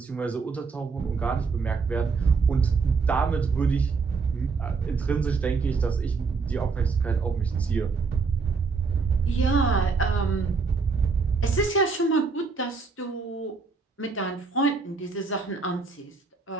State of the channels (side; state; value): left; quieter; 4.7 dB